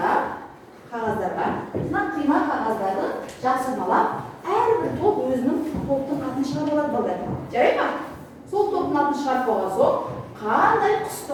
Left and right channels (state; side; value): identical; both; correlation 1.00